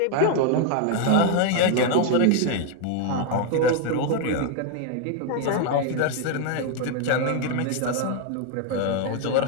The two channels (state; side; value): different; both; correlation 0.00